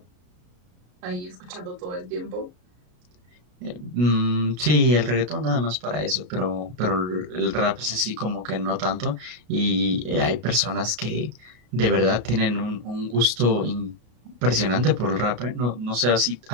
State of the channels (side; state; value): left; late; 33 ms